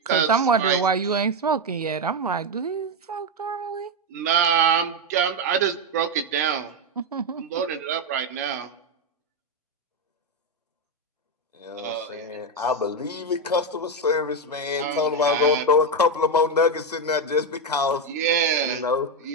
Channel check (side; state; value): both; normal; correlation 0.07